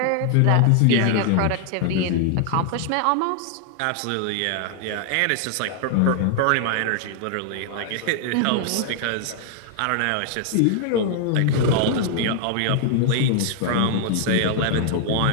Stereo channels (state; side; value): different; both; correlation 0.00